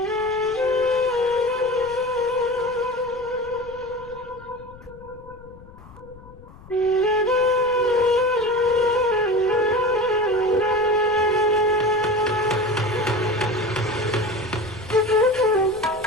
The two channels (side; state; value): left; noise; rumble, 21 dB below the sound